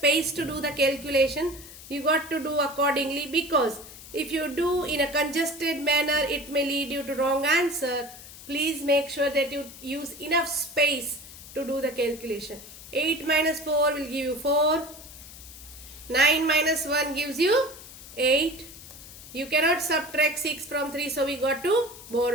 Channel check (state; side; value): noise; left; hiss, 16 dB below the sound